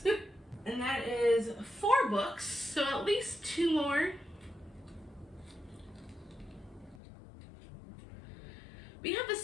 And that is 4 books, so at least 2 more. We have a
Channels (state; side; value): drops out; right; at 7.0 s